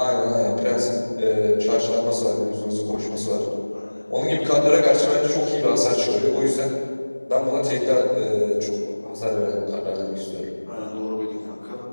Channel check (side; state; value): both; inverted; correlation -1.00